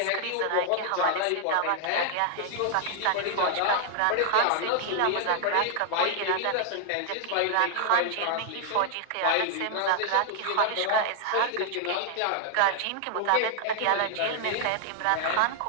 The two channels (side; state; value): both; different; correlation 0.00